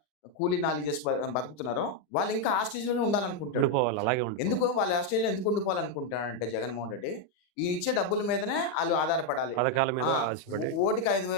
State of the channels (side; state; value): right; late; 40 ms